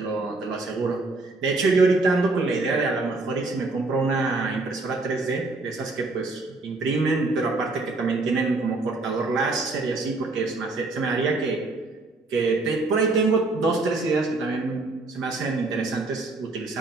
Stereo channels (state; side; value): quieter; left; 3.3 dB